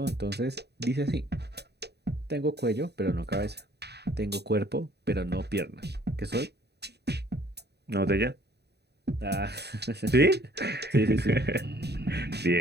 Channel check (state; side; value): late; left; 0.48 ms